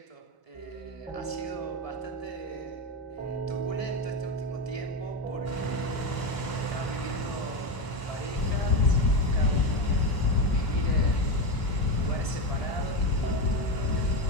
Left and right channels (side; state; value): right; late; 1.0 ms